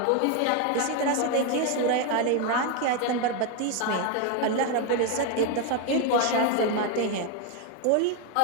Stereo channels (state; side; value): different; both; correlation 0.02